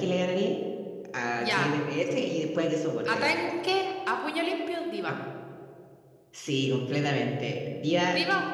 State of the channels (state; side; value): identical; both; correlation 1.00